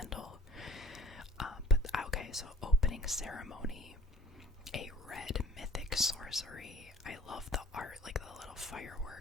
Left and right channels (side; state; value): both; normal; correlation 0.48